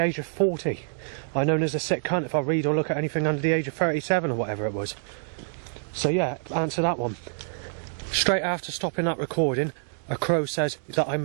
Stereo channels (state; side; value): silent; left; digital silence